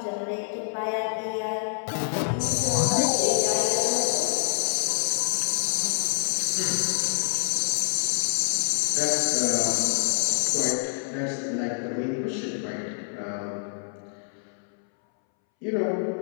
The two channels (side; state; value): right; silent; 61 dB below the other